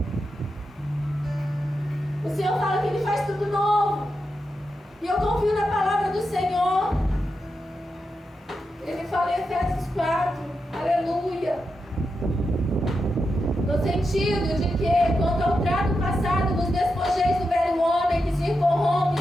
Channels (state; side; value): normal; both; correlation 0.87